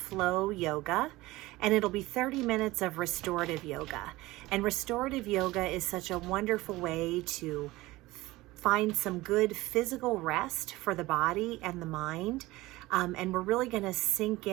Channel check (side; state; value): left; quieter; 19.2 dB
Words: yoga, and it'll be 30 minutes of restorative yoga. And restorative yoga is such a wonderful way to find some good physical rest for the body and the mind. And we're really going to sink